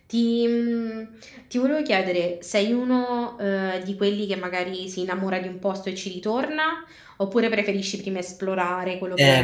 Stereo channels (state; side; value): identical; both; correlation 1.00